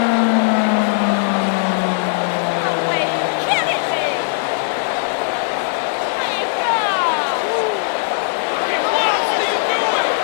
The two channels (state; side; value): silent; right; 66 dB below the other